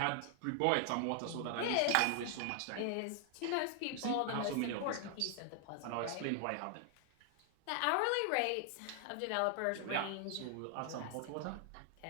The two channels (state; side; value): different; both; correlation 0.00